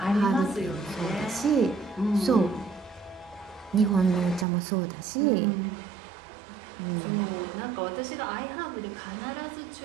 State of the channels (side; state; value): left; drops out; at 4.5 s